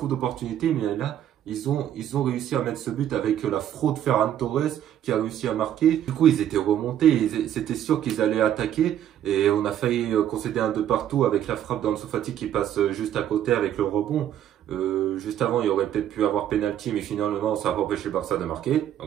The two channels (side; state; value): left; quieter; 10.8 dB